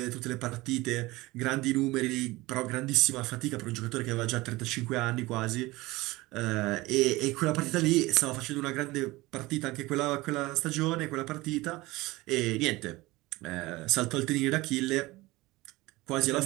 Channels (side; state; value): left; quieter; 20.4 dB